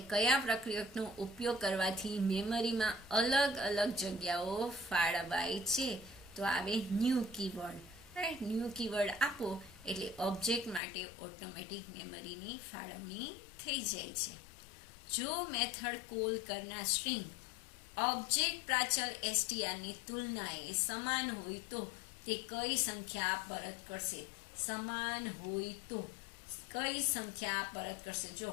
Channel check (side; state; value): right; drops out; at 10.8 s